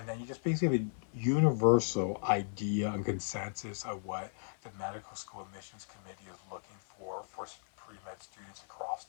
then you just basically have a universal idea and consensus of what the medical school admissions committee is looking for pre-med students across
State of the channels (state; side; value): silent; right; 54 dB below the other